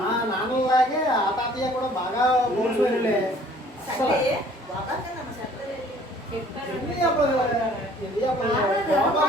నాన్నలాగే ఆ తాతయ్య కూడా బాగా పోల్చులే.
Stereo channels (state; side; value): normal; both; correlation 0.55